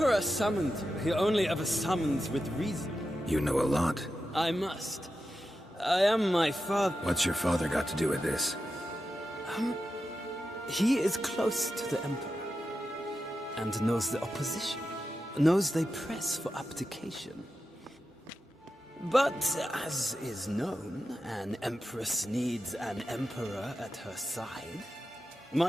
summoned you. He only ever summons with reason. You know a lot. I must. I am my father. What's your father got to do with this? He is close to the Emperor. And knows the opposition. Knows they press for abdication. But, as is known, an Empress needs an Emperor at her side.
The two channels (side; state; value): both; normal; correlation 0.90